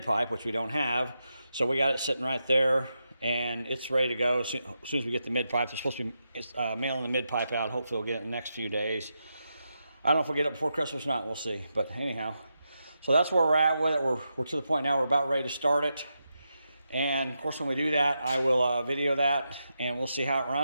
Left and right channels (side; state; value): both; inverted; correlation -0.86